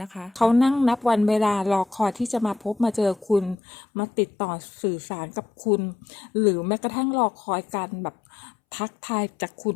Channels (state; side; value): drops out; right; at 3.6 s